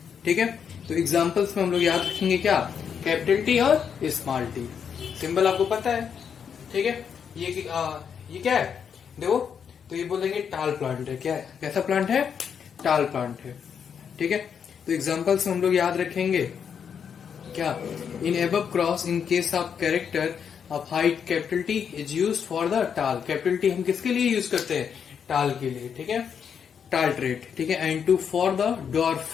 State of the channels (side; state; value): right; quieter; 7.3 dB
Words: ठीक है। तो एग्जांपल्स में हम लोग याद रखेंगे क्या? Capital T और स्मॉल टी। सिंबल आपको पता है, ठीक है। ये क्या है? देखो, तो ये बोलेंगे टाल प्लांट है। क्या है? कैसा प्लांट है? टाल प्लांट है, ठीक है। तो एग्जांपल्स में हम लोग याद रखेंगे क्या? इन above cross in case of character of height capital T is used for the टाल। कैपिटल टी हम किसके लिए यूज करते हैं? टाल के लिए, ठीक है, टाल ट्रेट, ठीक है। And two for the